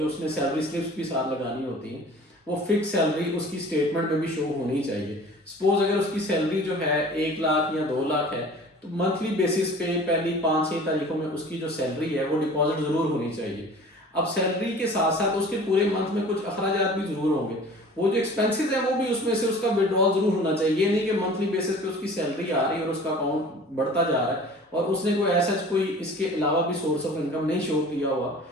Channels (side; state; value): both; normal; correlation 0.44